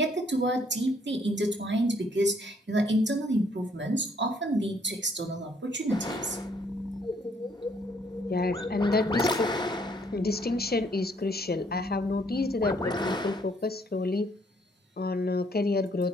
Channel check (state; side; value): normal; both; correlation 0.66